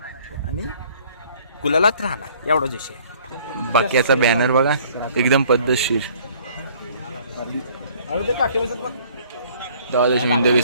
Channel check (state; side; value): inverted; both; correlation -0.57